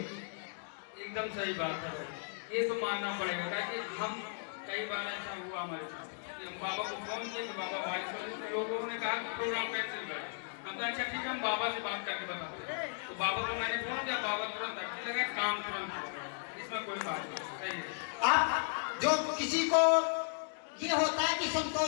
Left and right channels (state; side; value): silent; right; digital silence